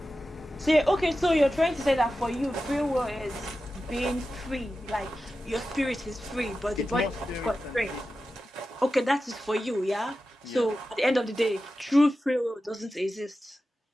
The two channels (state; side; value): normal; both; correlation 0.93